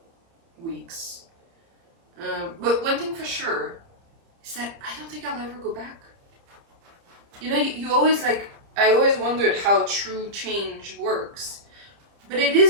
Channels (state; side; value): late; left; 30 ms